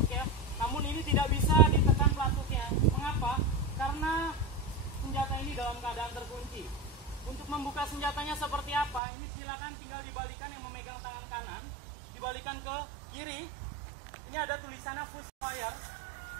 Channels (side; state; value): left; drops out; at 9.0 s